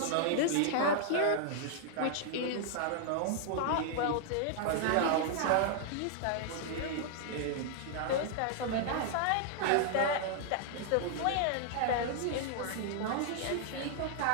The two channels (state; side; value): different; both; correlation 0.00